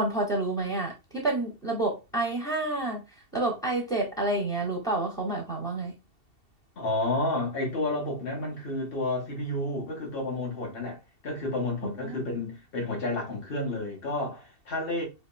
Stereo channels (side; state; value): right; late; 2.7 ms